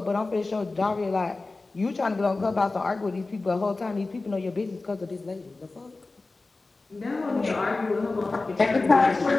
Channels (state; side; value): quieter; right; 3.5 dB